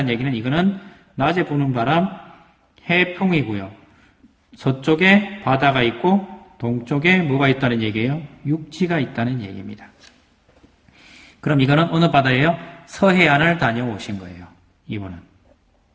얘기는 이거는 낮에 부는 바람 해풍이고요. 서쪽에 바다가 있고 동쪽에 뭐가 있다는 얘기예요? 육지가 있다는 얘기입니다. 그럼 이거는 어느 바다예요? 서해안을 다녀오신 거예요. 이분은.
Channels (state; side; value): identical; both; correlation 1.00